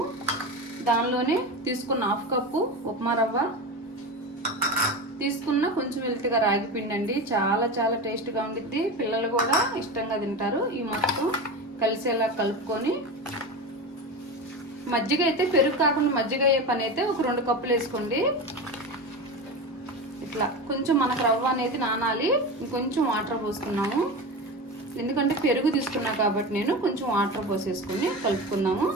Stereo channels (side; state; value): both; normal; correlation 0.24